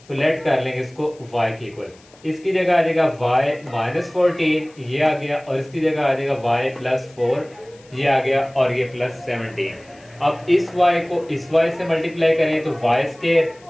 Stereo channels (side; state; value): left; noise; hiss, 27 dB below the sound